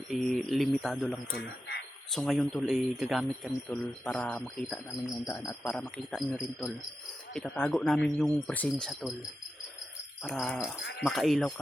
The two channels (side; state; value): both; normal; correlation 0.89